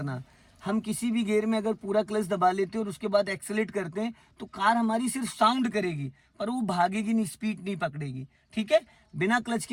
हम किसी भी गियर में अगर पूरा क्लच दबा लेते हैं और उसके बाद एक्सेलेरेट करते हैं तो कार हमारी सिर्फ साउंड करेगी, पर वो भागेगी नहीं, स्पीड नहीं पकड़ेगी, ठीक है। बिना क्लच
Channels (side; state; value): both; identical; correlation 1.00